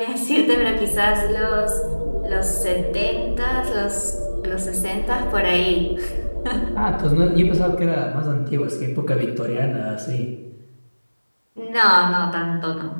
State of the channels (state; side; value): inverted; both; correlation -1.00